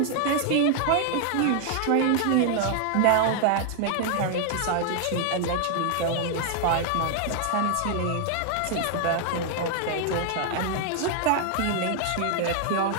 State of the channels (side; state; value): both; different; correlation 0.00